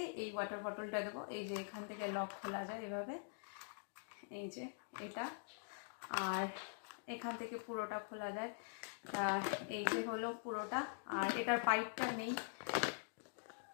এই ওয়াটার বটলটা দেবো। এই যে এখান থেকে লক খোলা যায় এভাবে, এই যে এটা, আর এখান থেকে পুরোটা খোলা যায়। এই যে হলো পুরোটা, আর এটার পাইপটা নেই,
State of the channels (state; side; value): silent; right; digital silence